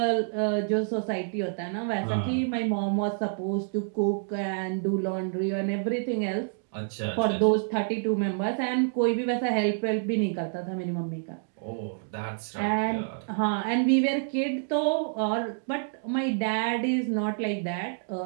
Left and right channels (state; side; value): silent; left; digital silence